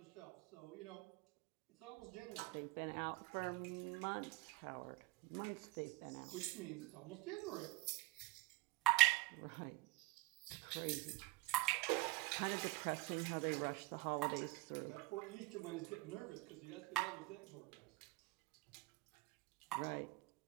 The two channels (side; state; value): left; quieter; 20.1 dB